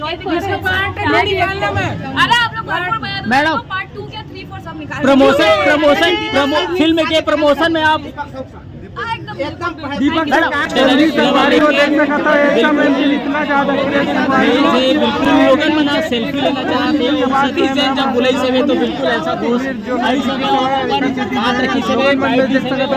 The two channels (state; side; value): identical; both; correlation 1.00